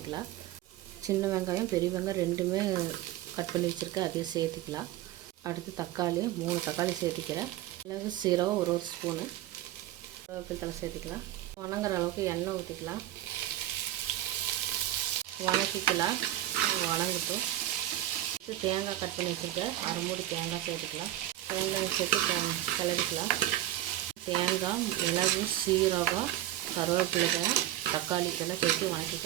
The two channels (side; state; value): left; quieter; 14.2 dB